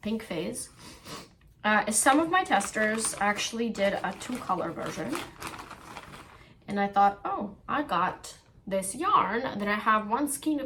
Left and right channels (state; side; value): identical; both; correlation 1.00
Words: pink phase. Some of my testers actually did a 2-color version. And I thought, oh, I got this yarn that I have 1 skein